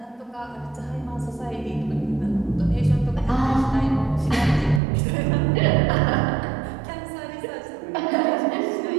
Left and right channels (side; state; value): left; drops out; at 4.8 s